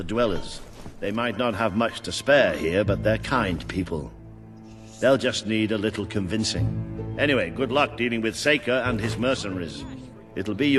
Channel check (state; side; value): identical; both; correlation 1.00